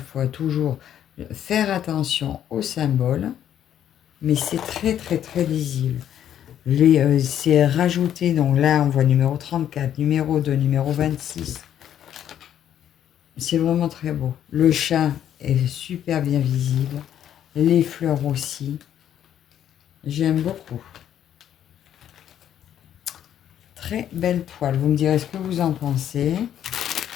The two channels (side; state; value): right; quieter; 10.3 dB